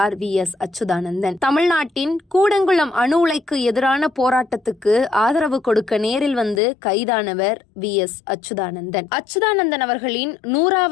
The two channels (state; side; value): drops out; right; at 6.6 s